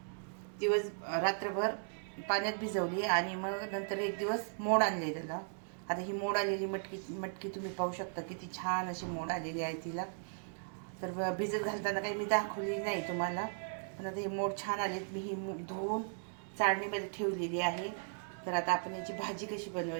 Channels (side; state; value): left; silent; digital silence